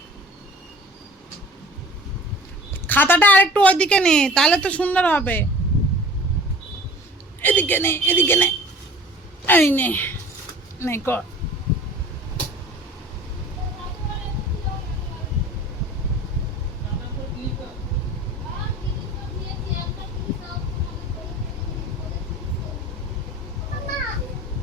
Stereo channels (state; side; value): normal; both; correlation 0.44